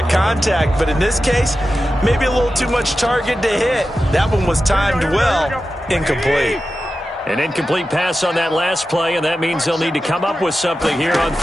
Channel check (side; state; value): both; normal; correlation 0.92